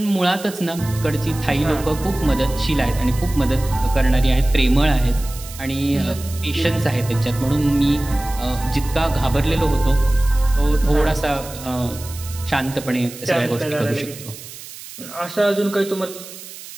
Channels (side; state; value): right; noise; hiss, 15 dB below the sound